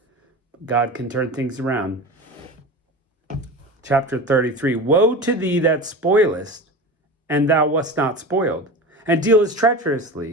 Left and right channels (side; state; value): both; normal; correlation 0.29